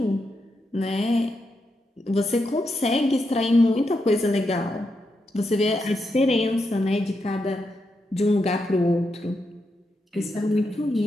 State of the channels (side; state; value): both; normal; correlation 0.84